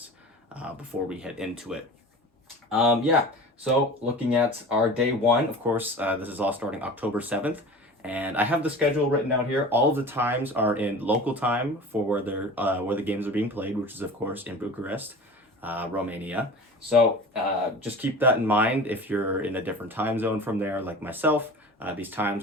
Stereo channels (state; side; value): normal; both; correlation 0.37